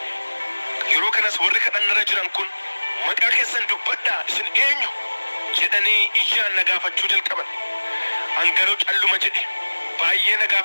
Yeroo kanas warri kadhannarra jiran kun maqaa keessan dubbadhaa isin eenyu jedhanii ijaan na gaafachuu jalqaban. An garuu calluma jedhe. Baay'ee na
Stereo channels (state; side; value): inverted; both; correlation -1.00